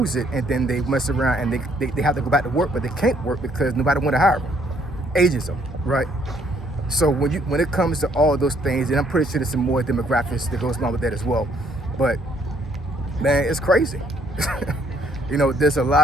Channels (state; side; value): normal; both; correlation 0.67